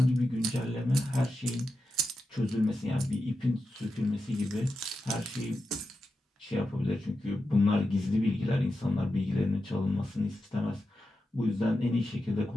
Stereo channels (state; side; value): normal; both; correlation 0.90